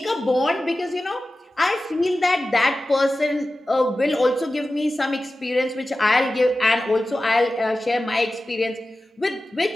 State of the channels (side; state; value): both; normal; correlation 0.95